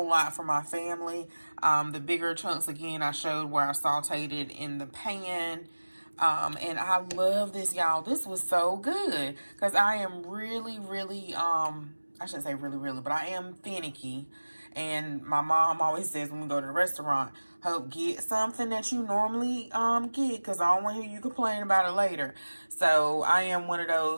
lot for my family. The bigger chunks, again, I showed where I sauteed it in the pan. And I love this, y'all. This was so good because I am really, I shouldn't say really, but I am finicky. And my mom always says when we go to the restaurant, Hope, get something that you normally get because I don't want to hear you complain about it later. So I am one of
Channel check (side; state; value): both; inverted; correlation -1.00